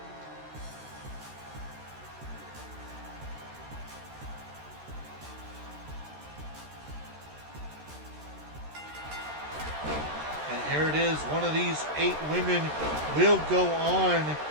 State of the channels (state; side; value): late; left; 13 ms